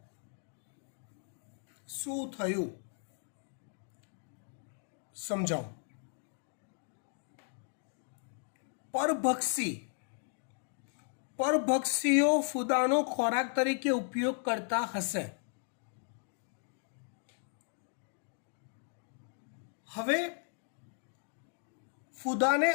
શું થયું સમજાવો. પરભક્ષીઓ ફૂદાનો ખોરાક તરીકે ઉપયોગ કરતા હશે. હવે ફૂદાને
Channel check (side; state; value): right; silent; 54 dB below the other